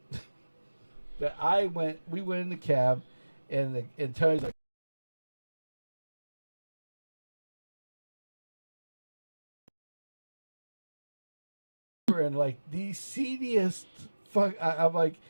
We went in the cab, and Tony's like, and like the seediest fuck. I'm like,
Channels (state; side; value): inverted; both; correlation -1.00